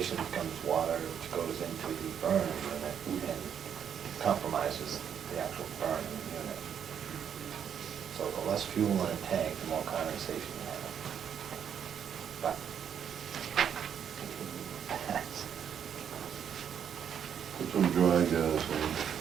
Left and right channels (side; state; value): left; quieter; 8.4 dB